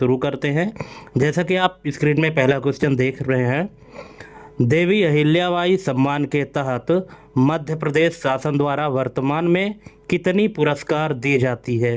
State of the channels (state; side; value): identical; both; correlation 1.00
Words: करते हैं। जैसा कि आप स्क्रीन में पहला क्वेश्चन देख रहे हैं, देवी अहिल्याबाई सम्मान के तहत मध्य प्रदेश शासन द्वारा वर्तमान में कितनी पुरस्कार दी जाती है।